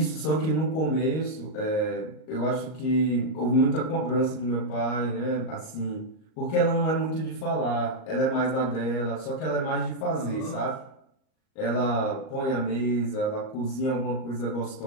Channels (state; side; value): late; right; 38 ms